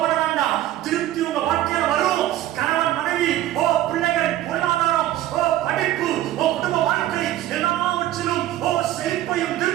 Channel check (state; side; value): quieter; left; 13.7 dB